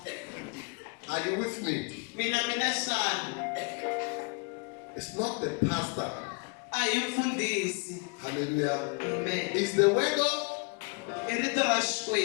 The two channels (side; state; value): right; quieter; 34.9 dB